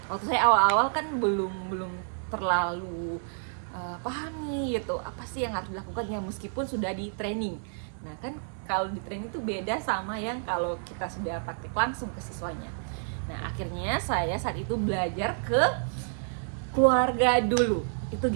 waktu saya awal-awal kan belum terlalu paham nih gitu apa sih yang harus dilakukan ya meskipun sudah di training. Nah kan kalau di training itu beda sama yang kalau kita sudah praktik langsung ke siswanya. Nah akhirnya saya saat itu belajar ke keluarga dulu itu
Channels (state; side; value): silent; left; digital silence